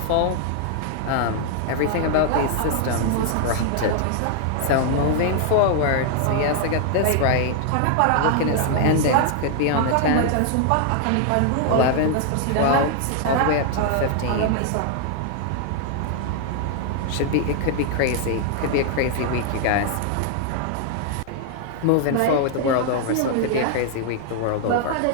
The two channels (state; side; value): different; both; correlation 0.00